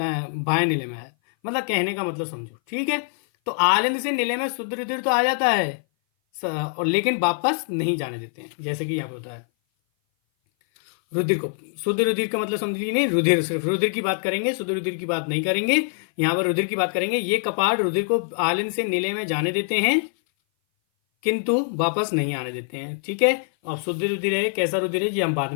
नीले में आया। मतलब कहने का मतलब समझो। ठीक है, तो आलिंद से नीले में शुद्ध रुधिर तो आ जाता है, और लेकिन वापस नहीं जाने देते हैं, जैसे कि यहाँ पे होता है। रुधिर को, शुद्ध रुधिर का मतलब समझिए नहीं, रुधिर, सिर्फ रुधिर की बात करेंगे, शुद्ध रुधिर की बात नहीं करेंगे। यहाँ पर रुधिर की बात करेंगे। ये कपाट रुधिर को आलिंद से नीले में जाने देते हैं, किंतु वापस नहीं आने देते हैं। ठीक है, अब शुद्ध रुधिर है, कैसा रुधिर है, ये हम बाद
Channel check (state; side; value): silent; right; 58 dB below the other